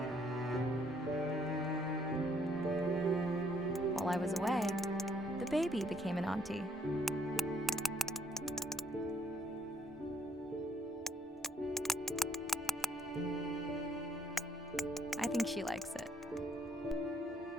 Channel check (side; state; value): both; normal; correlation 0.68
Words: While I was away, the baby became an auntie. I think she likes it.